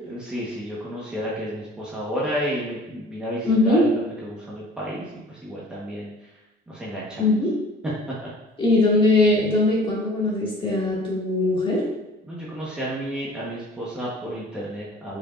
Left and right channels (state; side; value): normal; both; correlation 0.48